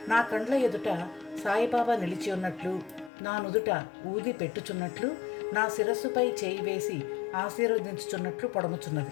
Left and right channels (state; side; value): drops out; right; at 3.1 s